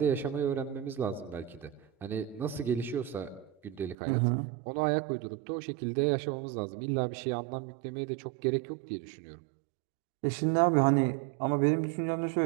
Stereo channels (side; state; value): left; drops out; at 4.0 s